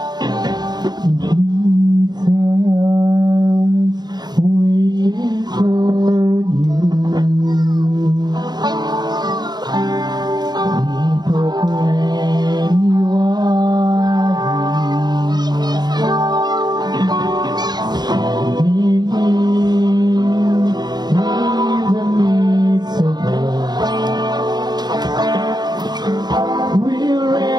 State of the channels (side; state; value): left; late; 0.20 ms